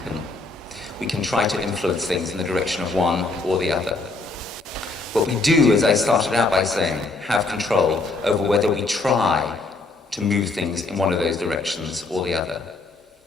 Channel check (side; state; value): right; quieter; 3.5 dB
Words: We can try to influence things in the direction of one or the other. What we do, as I started out by saying, have control over whether we try to move things in one of those directions or the other.